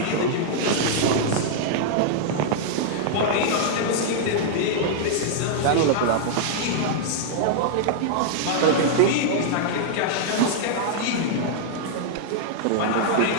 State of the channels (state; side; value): different; both; correlation -0.01